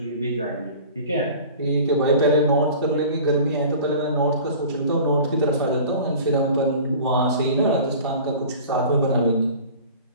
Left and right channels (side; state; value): both; inverted; correlation -0.42